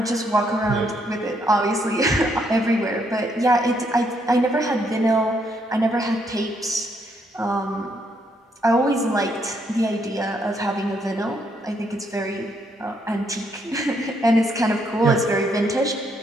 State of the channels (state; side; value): normal; both; correlation 0.73